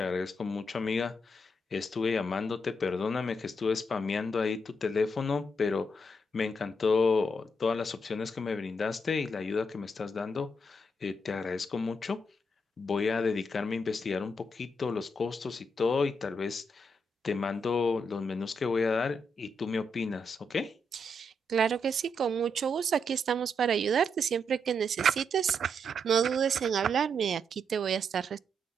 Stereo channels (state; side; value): normal; both; correlation 0.79